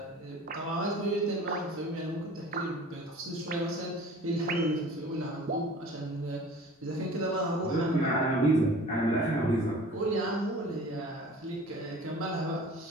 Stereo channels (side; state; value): both; normal; correlation 0.44